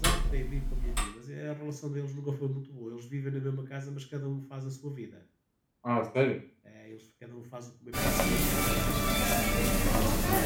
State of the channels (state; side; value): identical; both; correlation 1.00